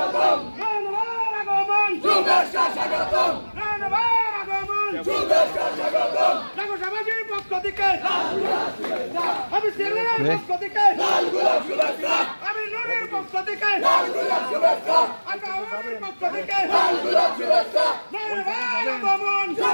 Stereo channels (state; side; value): inverted; both; correlation -1.00